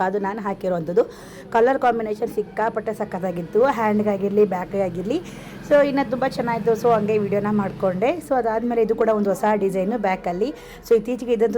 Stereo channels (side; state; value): both; identical; correlation 1.00